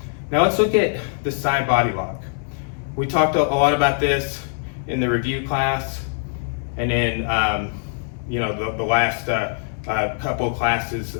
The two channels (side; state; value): right; silent; digital silence